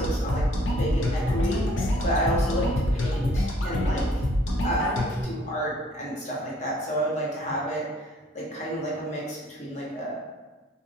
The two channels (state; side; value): normal; both; correlation 0.60